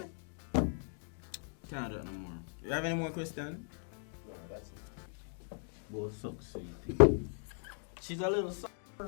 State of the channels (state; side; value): silent; right; 53 dB below the other